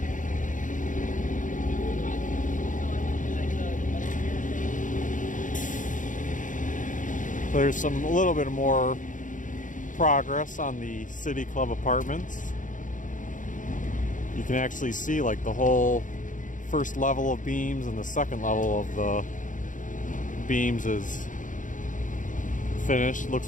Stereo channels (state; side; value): late; right; 0.37 ms